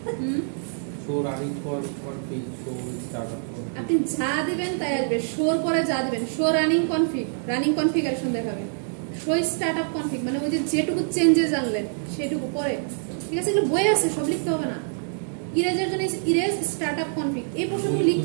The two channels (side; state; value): left; silent; 56 dB below the other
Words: show running for config show startup. আপনি যা দিবেন তাই আসবে, শোর পরে যা দিবেন, show running config, running configuration দেখাবে, শো স্টার্টআপ কনফিগ মানে ওই যে যেটুকু চেঞ্জেস আনলেন সেটুকু পরে। ঠিক আছে, এগুলো বই আছে, সব লিখতে হবে না। ইরেজের জন্য ইরেজ স্টার্টআপ কনফিগ এই প্রশ্নগুলো